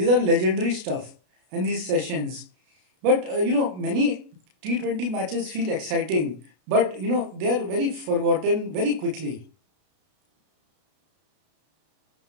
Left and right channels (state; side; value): late; left; 33 ms